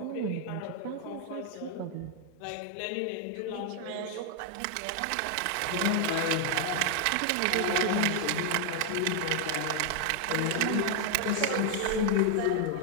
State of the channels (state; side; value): different; both; correlation 0.00